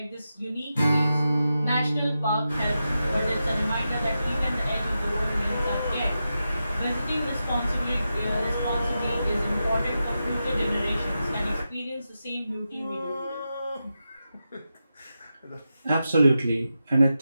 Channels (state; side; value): inverted; both; correlation -0.90